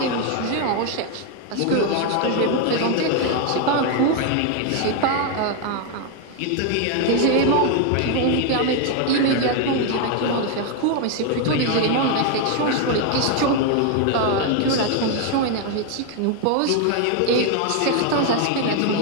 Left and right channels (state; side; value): different; both; correlation 0.01